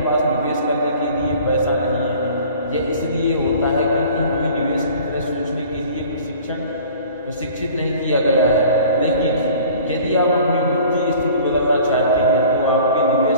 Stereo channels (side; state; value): both; inverted; correlation -0.48